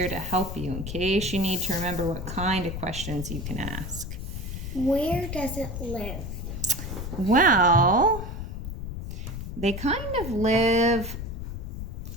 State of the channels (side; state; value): left; noise; rumble, 6 dB below the sound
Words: to help you in case you need to remember what kind of questions you can ask. Where does it live? Well, they kind of live